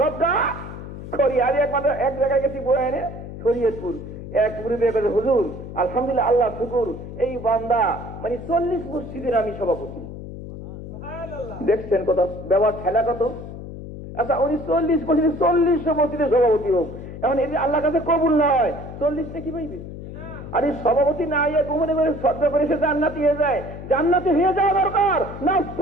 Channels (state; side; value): noise; left; hum, 11 dB below the sound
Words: সবটা করি। আমি একমাত্র এক জায়গায় গেছি বয়ে এনে শরীয়তপুর, এক মুরিদে বলে হুজুর আলহামদুলিল্লাহ আল্লাহ শুকুর এই বান্দা মানে 40 মসজিদের আমি সভাপতি। দেখছেন কত ব্যবহার খেলা কত। আচ্ছা উনি 40 মসজিদের সভাপতি হোক, এখন এই আল্লাহর কাছে কবুল নয়, 40 কি পাইবে? আর এই সভাপতি না ইয়ে গোপনে করে শ্রদ্ধা করে সে জান্নাতি হয়ে যায়, জান্নাতি হয়ে যাওয়া দরকার না